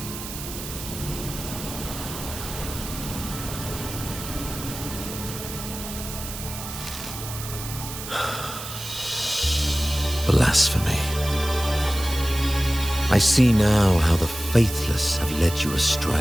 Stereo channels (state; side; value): noise; right; hiss, 9 dB below the sound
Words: Blasphemy. I see now how the faithless have led you